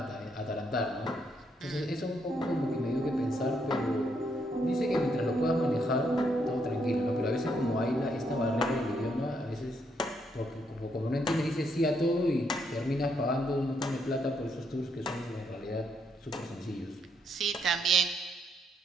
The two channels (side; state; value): both; normal; correlation 0.75